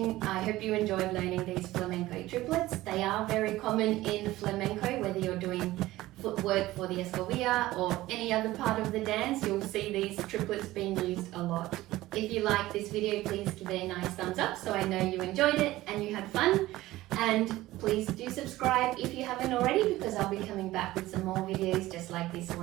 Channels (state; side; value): quieter; left; 17.0 dB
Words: I hope you enjoyed learning these flamenco triplets. They are very common in flamenco, whether you're doing footwork for the escobilla or any other part of the dance, you'll see these triplets being used a lot. If you like this video, please give it a nice thumbs up so I know you enjoyed it and you had fun. And please do subscribe if you haven't already, because I'll be coming back with some more videos just like this